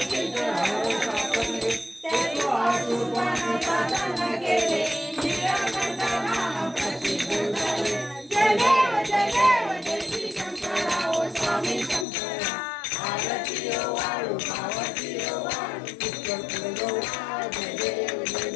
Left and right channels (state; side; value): drops out; right; at 12.1 s